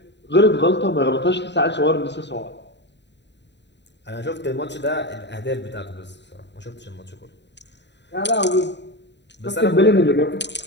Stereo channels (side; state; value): right; late; 0.51 ms